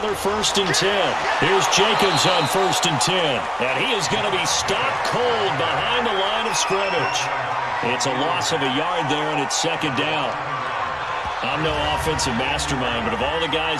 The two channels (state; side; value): identical; both; correlation 1.00